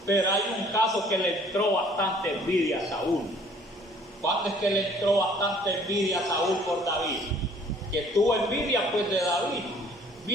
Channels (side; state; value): both; normal; correlation 0.57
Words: pero hay un caso que le entró bastante envidia a Saúl. ¿Cuándo es que le entró bastante envidia a Saúl por David? Que tuvo envidia, pues, de David.